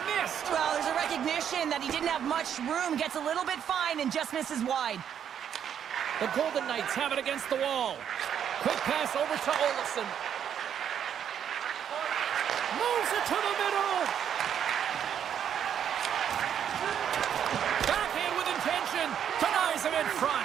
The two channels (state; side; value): quieter; left; 8.9 dB